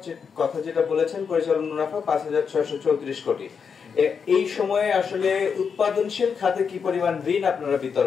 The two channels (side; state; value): right; quieter; 6.2 dB